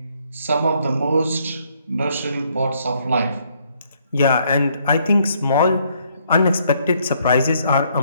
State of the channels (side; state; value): both; inverted; correlation -0.69